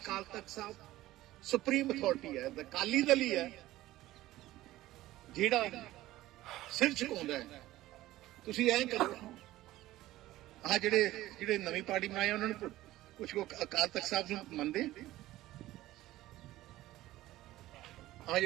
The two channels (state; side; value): quieter; left; 16.1 dB